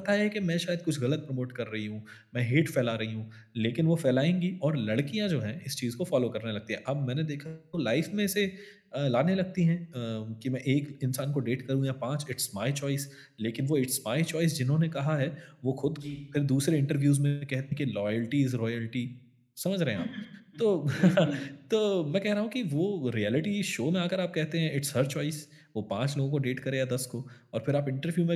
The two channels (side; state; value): both; identical; correlation 1.00